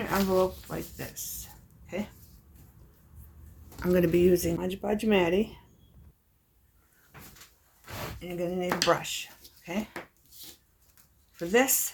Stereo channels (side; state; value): both; identical; correlation 1.00